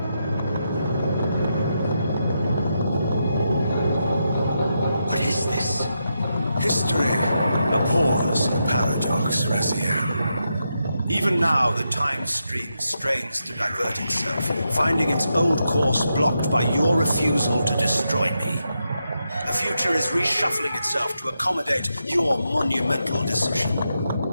abhors a paradox, Razиэль. Even now, the time stream strains to divert itself, finding its old course blocked by your refusal to destroy me. The future is reshuffling itself to accommodate your monumental decision.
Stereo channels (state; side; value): inverted; both; correlation -0.85